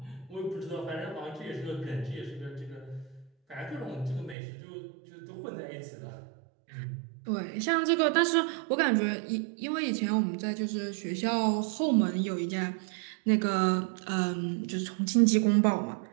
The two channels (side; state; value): left; drops out; at 4.4 s